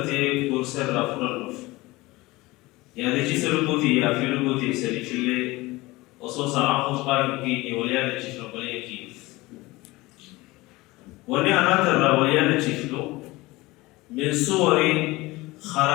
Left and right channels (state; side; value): quieter; right; 20.8 dB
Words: كورسر رافور النف يعني شيسا ربوتي يا في ربوتي سري شلي وصوصا عقوص قائم كيني وليانا شيسا رباني كيف وني أنا ترى وليانا شيسلو من صور